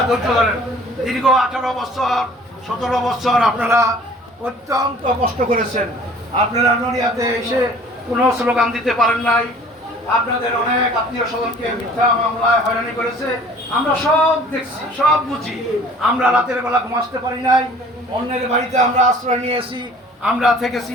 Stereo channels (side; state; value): both; normal; correlation 0.50